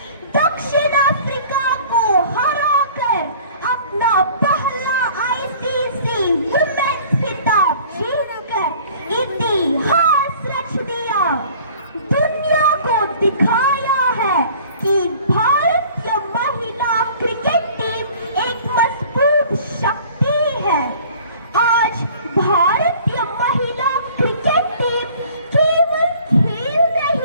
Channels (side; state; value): both; inverted; correlation -0.49